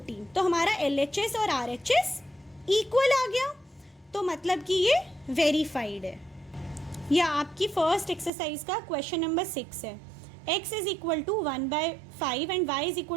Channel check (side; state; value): left; drops out; at 8.3 s